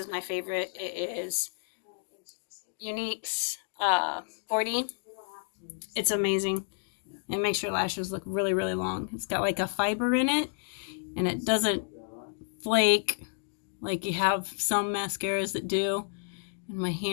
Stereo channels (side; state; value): right; silent; digital silence